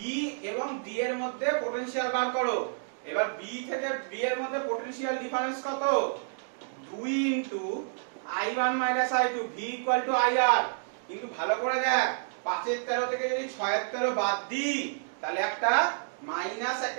এবং D এর মধ্যে পোটেনশিয়াল বার করো। এবার B থেকে D এর মধ্যে পোটেনশিয়াল ডিফারেন্স কত? 2 into I1 - I2, V = IR। কিন্তু ভালো করে দেখ, 5/13 থেকে যদি 6/13 বাদ দিই, তাহলে একটা মাইনাস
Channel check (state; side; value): silent; left; digital silence